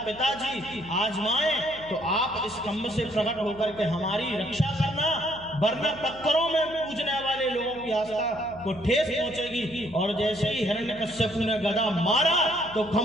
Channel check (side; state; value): left; noise; hum, 19 dB below the sound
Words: पिताजी आजमाए तो आप इस खंभ से प्रकट होकर के हमारी रक्षा करना, वरना पत्थरों में पूजने वाले लोगों की आस्था को ठेस पहुंचेगी। और जैसे ही हिरण्यकश्यपु ने गदा मारा तो